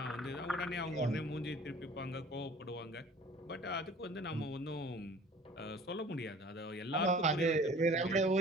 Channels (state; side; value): normal; both; correlation 0.48